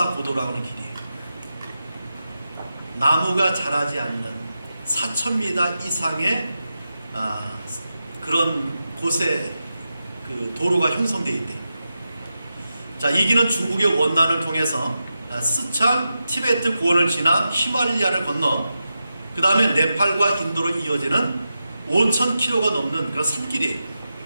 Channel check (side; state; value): both; inverted; correlation -0.90